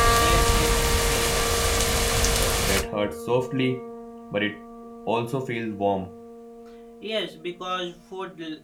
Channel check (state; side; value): identical; both; correlation 1.00